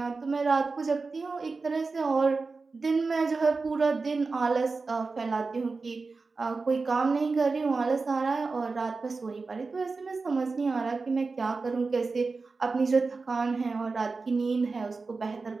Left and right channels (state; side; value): quieter; left; 4.1 dB